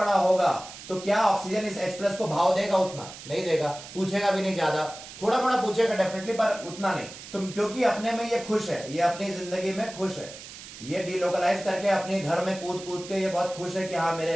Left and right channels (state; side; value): noise; right; hiss, 14 dB below the sound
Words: होगा तो क्या ऑक्सीजन इस H+ को भाव देगा? उतना नहीं देगा, पूछेगा भी नहीं, ज्यादा थोड़ा मोड़ा पूछेगा डेफिनेटली, पर उतना नहीं। तो क्योंकि अपने में ये खुश है, ये अपनी जिंदगी में खुश है, ये डीलोकलाइज करके अपने घर में कूद कूद के ये बहुत खुश है कि हाँ मेरे